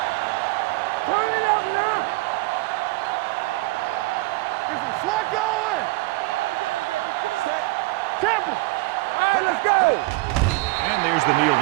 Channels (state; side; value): quieter; left; 23.2 dB